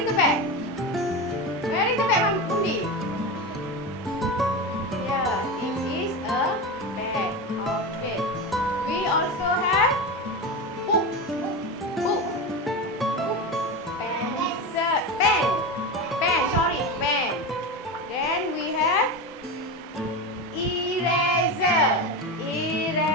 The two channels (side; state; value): both; normal; correlation 0.20